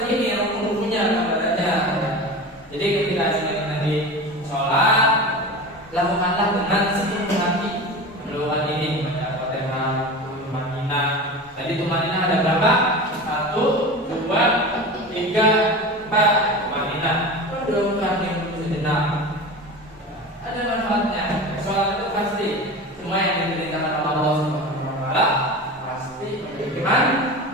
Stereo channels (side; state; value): both; normal; correlation 0.31